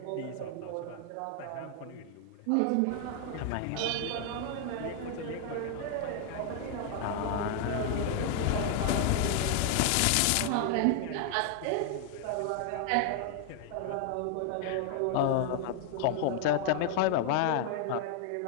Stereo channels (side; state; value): both; different; correlation 0.00